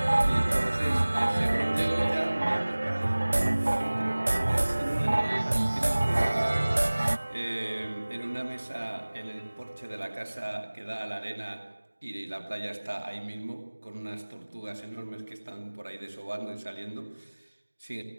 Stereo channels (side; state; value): both; inverted; correlation -1.00